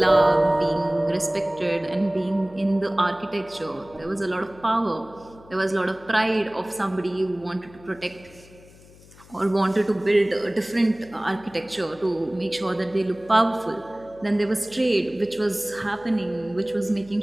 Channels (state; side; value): noise; left; hum, 23 dB below the sound